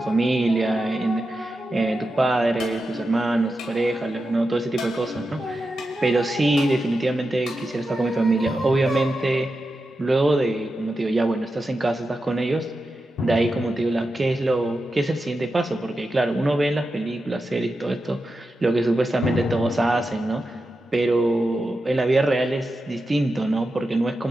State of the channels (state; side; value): normal; both; correlation 0.90